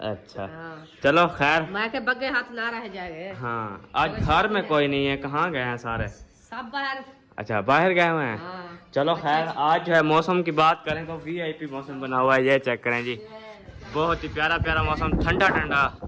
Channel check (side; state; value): both; identical; correlation 1.00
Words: अच्छा चलो खैर, मैं के बग्गे हाथ ना रह जाएंगे। हाँ आज घर में कोई नहीं है, कहाँ गए हैं सारे? सब बाहर। अच्छा बाहर गए हुए हैं। चलो खैर, आज जो है मौसम की बात करें तो वीआईपी मौसम बना हुआ है। ये चेक करें जी, बहुत ही प्यारा प्यारा मौसम, ठंडा ठंडा।